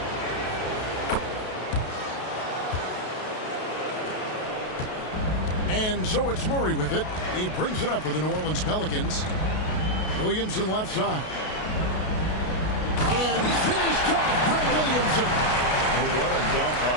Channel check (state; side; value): late; right; 33 ms